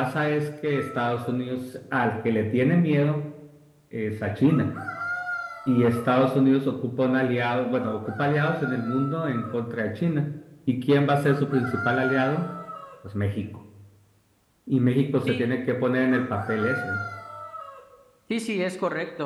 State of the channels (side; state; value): both; identical; correlation 1.00